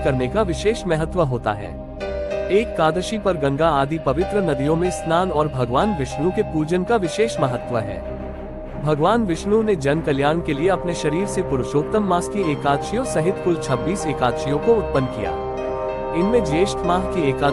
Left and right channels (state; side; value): identical; both; correlation 1.00